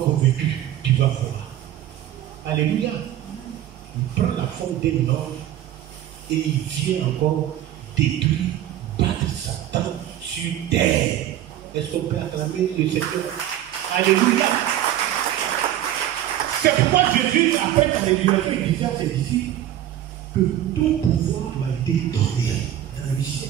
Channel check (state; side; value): quieter; left; 12.2 dB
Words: convaincu, tu vas voir. Alléluia. Il prend la forme d'un homme et il vient encore détruire, battre Satan sur terre. Est-ce qu'on peut acclamer le Seigneur? Alléluia. C'est pourquoi Jésus, après sa résurrection, il disait à ses disciples que tout pouvoir m'a été donné dans le ciel